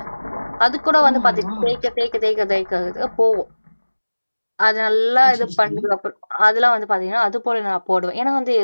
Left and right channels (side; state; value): both; inverted; correlation -1.00